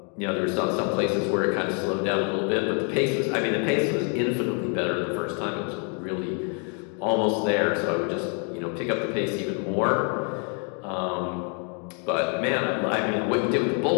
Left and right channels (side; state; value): right; quieter; 39.3 dB